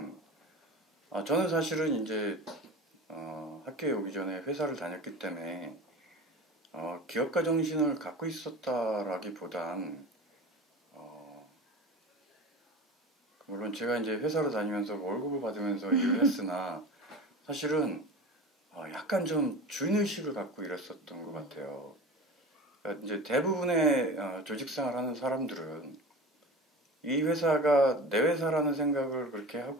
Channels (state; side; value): normal; both; correlation 0.33